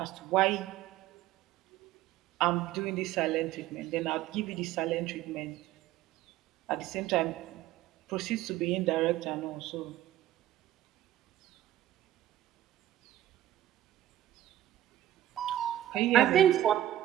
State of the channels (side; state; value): left; quieter; 13.2 dB